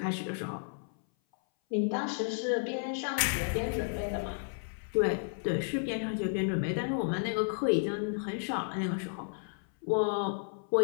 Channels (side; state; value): right; silent; 56 dB below the other